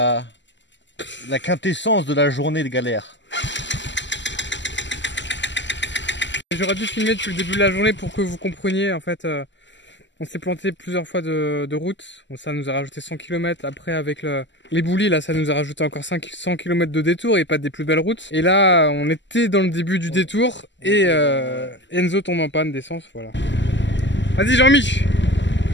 la quintessence de la journée de galère? J'aurais dû filmer depuis le début de la journée pour que vous compreniez. En fait, on s'est planté plusieurs fois de route. Bon, ça nous a rajouté 100 km. Après, avec les boulis, là, ça nous a rajouté encore 100 km de détour et pas des plus belles routes. Et là, on était dans le début du détour et Enzo tombe en panne d'essence. Voilà. Vas-y, Jean-Mich.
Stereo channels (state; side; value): late; right; 0.53 ms